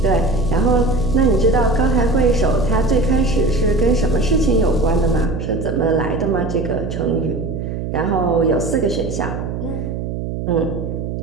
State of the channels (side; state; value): right; noise; hum, 5 dB below the sound